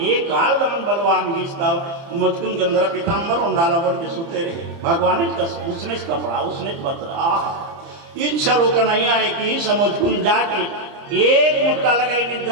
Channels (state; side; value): late; left; 30 ms